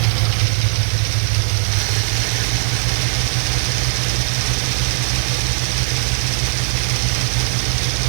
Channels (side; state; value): left; silent; digital silence